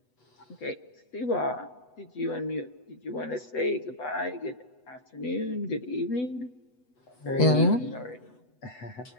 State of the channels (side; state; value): right; late; 8.1 ms